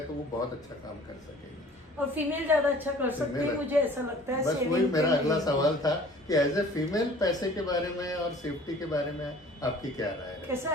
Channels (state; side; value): normal; both; correlation 0.50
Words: तो वो बहुत अच्छा काम कर सकेंगे। और फीमेल ज्यादा अच्छा कर सकती है, मुझे ऐसा लगता है। बस वही मेरा अगला सवाल था कि एज ए फीमेल पैसे के बारे में और सेफ्टी के बारे में आपकी क्या राय है? कैसा